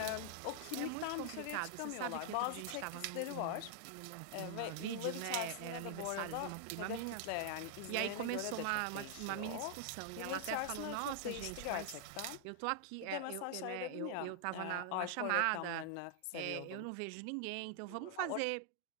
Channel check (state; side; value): different; both; correlation -0.01